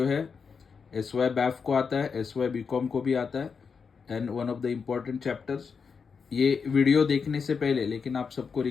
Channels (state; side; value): quieter; right; 5.7 dB